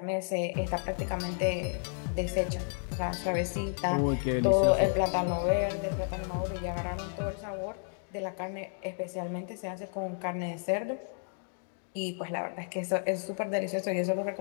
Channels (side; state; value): right; silent; 56 dB below the other